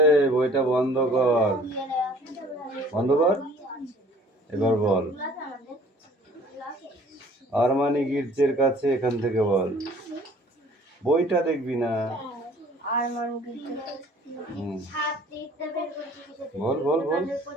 বইটা বন্ধ কর, বন্ধ কর। এবার বল, আরমানি গির্জের কাছে, এখান থেকে বল। বইটা দেখবি না, আর মানুষ হুম। সাত দিকটা বের করছি কিসের বল বল বল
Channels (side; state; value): both; normal; correlation 0.53